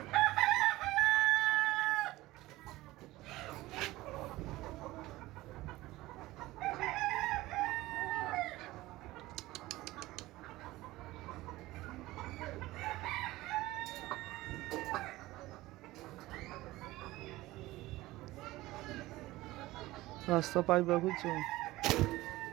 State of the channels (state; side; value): quieter; left; 18.2 dB